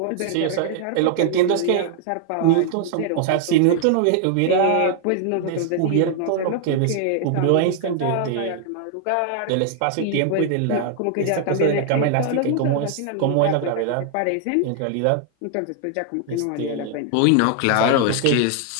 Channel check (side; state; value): both; different; correlation 0.00